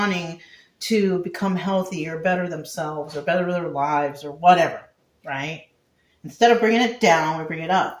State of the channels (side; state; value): both; identical; correlation 1.00